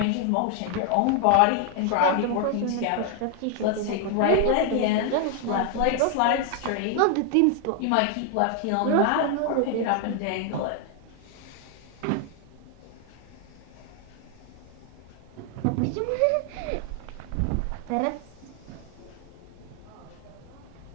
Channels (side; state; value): both; different; correlation 0.00